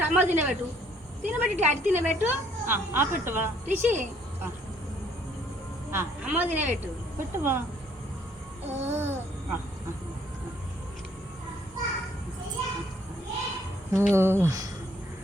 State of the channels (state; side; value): normal; both; correlation 0.64